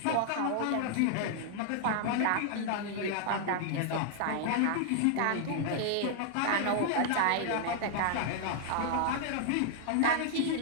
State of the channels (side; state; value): both; different; correlation -0.01